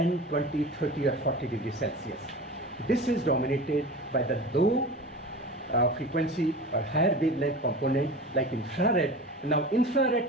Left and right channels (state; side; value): normal; both; correlation 0.33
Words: 20, 30 or 40 degrees Celsius. This is dominated by the low frequency or higher wavelength component like infrared. Now infrared